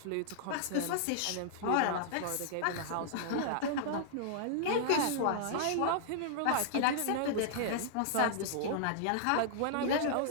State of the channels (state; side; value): different; both; correlation -0.01